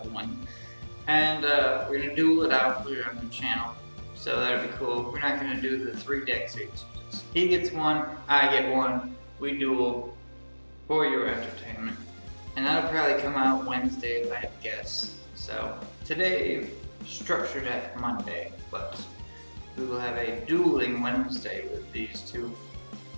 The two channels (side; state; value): both; inverted; correlation -1.00